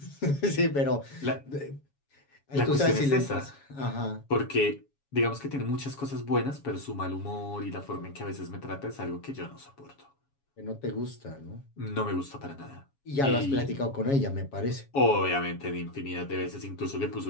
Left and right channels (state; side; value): late; right; 7.2 ms